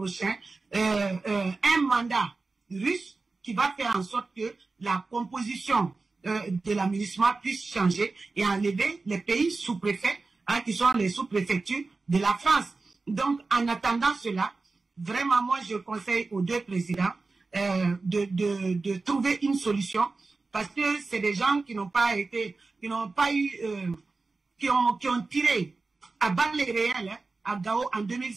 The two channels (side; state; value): left; quieter; 3.8 dB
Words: un mandat russe qui va faire en sorte que la composition de la MINUSMA puisse changer et enlever les pays sous-préfets, qui sont les sous-préfectures de la France. Donc, en attendant cela, vraiment, moi, je conseille aux deux présidents de trouver une solution parce que c'est des gens qui n'ont pas été, qui n'ont pas eu, qui ont tiré à balles réelles hein, à Gao en